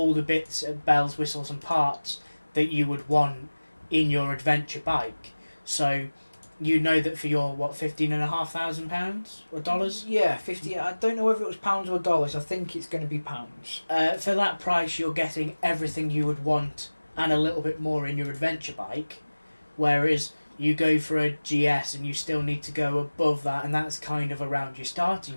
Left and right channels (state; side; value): inverted; both; correlation -1.00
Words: the bits of bells, whistles and parts that you would want in your adventure bike. So you know that for your £15,500 or dollars? Yeah, 50. I don't know whether it was pounds or dollars. I think it's going to be pounds. For that price, you're getting everything you would want and a little bit more in your adventure bike. Whereas you go for a GS and you still need to go above that, and that's kind of around your starting